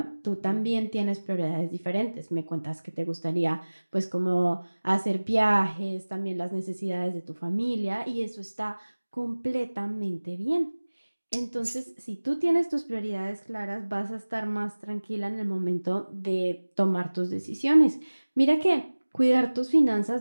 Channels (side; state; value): both; inverted; correlation -1.00